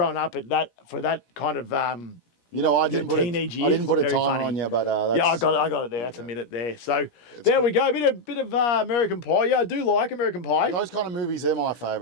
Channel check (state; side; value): late; right; 17 ms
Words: up, for that kind of I didn't put teenage I years, didn't put a very timer funny. on you, but that's, I got it there. That's a minute there. So there we go. Bit of American Pie. Yeah, I do like American Pie. Those kind of movies, they're my